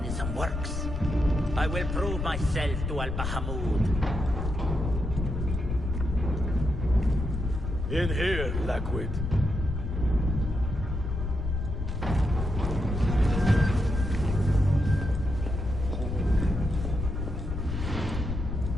works, I will prove myself to Al-Bahamud. In here, Lakwid.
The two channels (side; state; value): left; noise; rumble, 3 dB below the sound